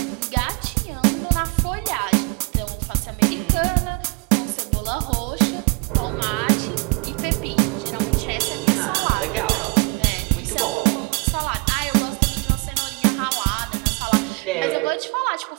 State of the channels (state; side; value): quieter; left; 30.4 dB